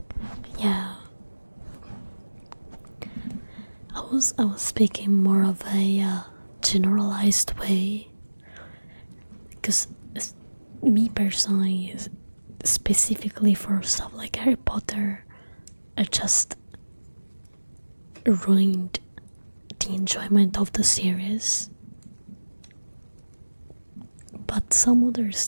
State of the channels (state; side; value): inverted; both; correlation -1.00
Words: Yeah. I was speaking more of a generalized way, because me personally, specifically for stuff like Harry Potter, it just ruined the enjoyment of the series. But some other